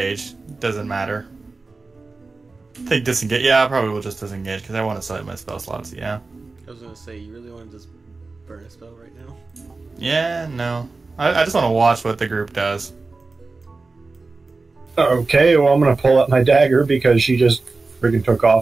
Doesn't matter. I think disengage. Yeah, I probably will just disengage because I want to select my spell slots. Yeah. I was gonna say, you really want to just burn a spell right now? Yeah, no. I just want to watch what the group does. Okay, well, I'm going to pull out my dagger because she just friggin' took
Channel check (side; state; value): left; quieter; 3.8 dB